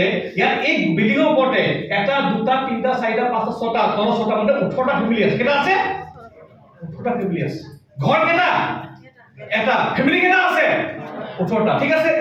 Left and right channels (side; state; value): both; identical; correlation 1.00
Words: ইয়াত এই বিল্ডিঙৰ ওপৰতে 1, 2, 3, 4, 5, 6টা, 6টা মানে 18টা ফেমিলি আছে। কেইটা আছে? 18টা ফেমিলি আছে। ঘৰ কেইটা? এটা। ফেমিলি কেইটা আছে? 18টা। ঠিক আছে,